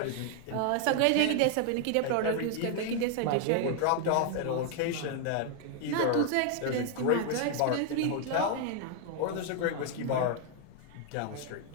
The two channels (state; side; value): different; both; correlation 0.00